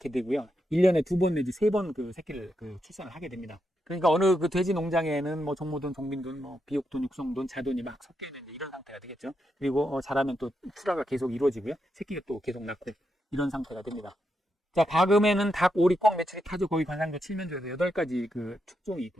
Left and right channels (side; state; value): both; normal; correlation 0.83